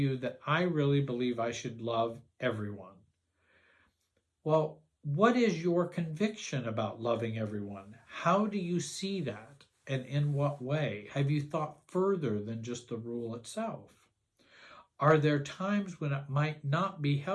that I really believe I should love everyone, Well, what is your conviction about loving everyone? How do you see that? And in what way? Have you thought further than just the rule itself? Are there times when it might not be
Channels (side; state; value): both; identical; correlation 1.00